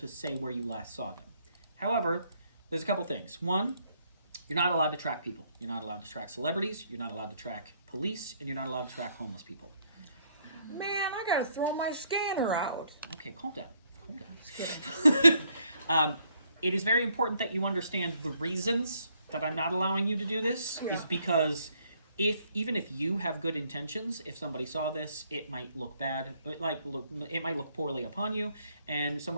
say where you last saw them. However, there's a couple things. One, you're not allowed to track people. You're not allowed to track celebrities. You're not allowed to track police, and you're not allowed to track homeless people. Man, I gotta throw my scanner out. Okay, calm down. Calm down. It is very important that you understand the reasons that I'm not allowing you to do this is because even if you have good intentions, if somebody saw this, it might look bad. It might look poorly upon you, and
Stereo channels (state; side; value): inverted; both; correlation -0.69